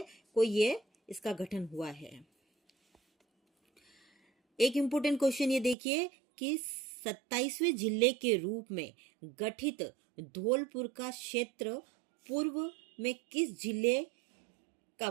को ये इसका गठन हुआ है। एक इम्पोर्टेंट क्वेश्चन ये देखिए कि 27वें जिले के रूप में गठित धौलपुर का क्षेत्र पूर्व में किस जिले का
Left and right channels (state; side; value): drops out; left; at 5.8 s